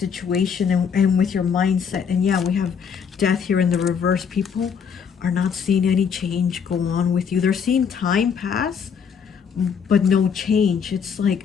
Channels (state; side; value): quieter; right; 6.8 dB